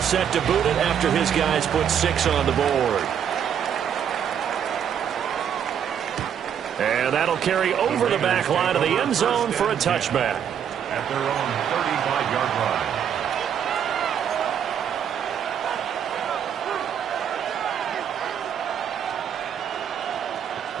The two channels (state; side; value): quieter; left; 8.6 dB